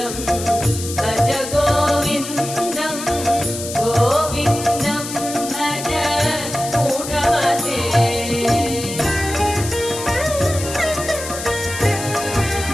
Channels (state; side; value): noise; left; hiss, 8 dB below the sound